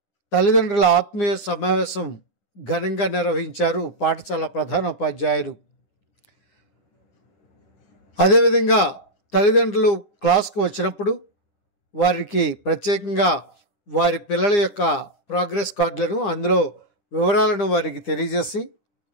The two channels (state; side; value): late; right; 9.8 ms